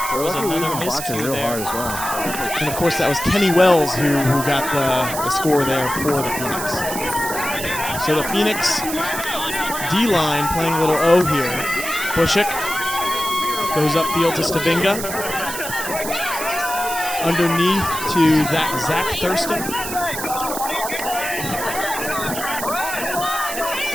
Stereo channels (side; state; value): right; noise; hiss, 7 dB below the sound